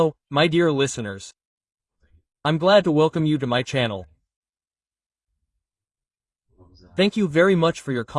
my dear listeners. I'm glad to welcome you to my channel. Thank you very much for your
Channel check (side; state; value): both; identical; correlation 1.00